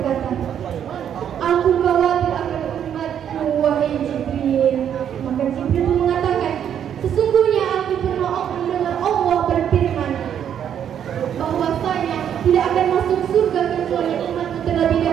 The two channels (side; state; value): left; quieter; 9.2 dB